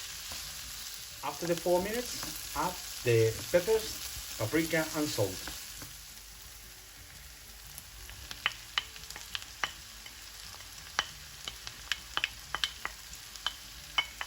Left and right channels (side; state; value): both; identical; correlation 1.00